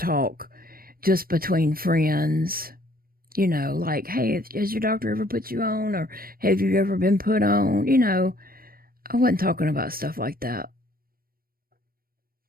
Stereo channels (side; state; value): left; late; 0.43 ms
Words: just between friends, like, hey, has your doctor ever put you on, or have you ever been put on? I wasn't talking about stuff like that.